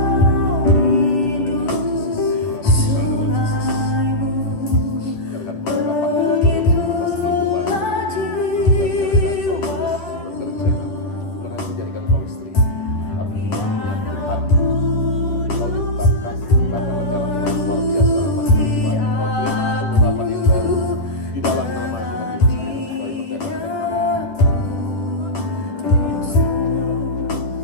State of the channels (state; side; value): late; right; 9.4 ms